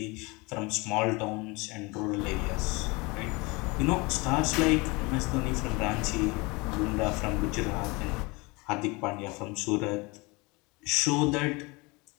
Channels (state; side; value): quieter; right; 26.0 dB